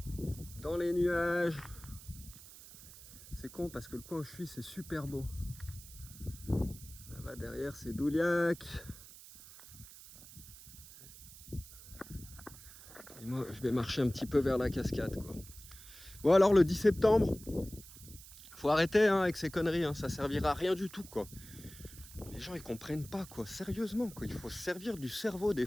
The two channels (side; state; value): right; noise; hiss, 17 dB below the sound